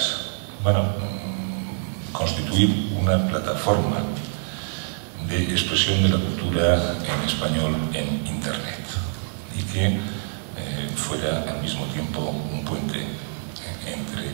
Bueno, constituir una plataforma de expresión de la cultura en español en Internet y que fuera al mismo tiempo un puente entre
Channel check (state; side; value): silent; left; digital silence